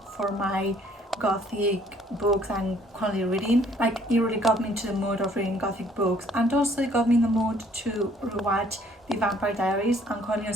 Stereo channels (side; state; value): both; normal; correlation 0.61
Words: for my Gothic books and currently reading. Like, it really got me into the mood of reading Gothic books, and also it got me in the mood to rewatch The Vampire Diaries. I'm currently on